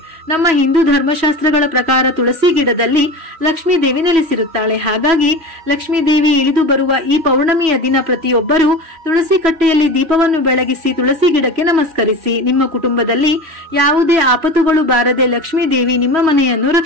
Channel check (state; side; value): late; left; 3.1 ms